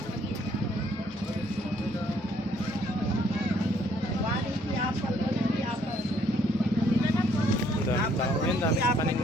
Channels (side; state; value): both; normal; correlation 0.66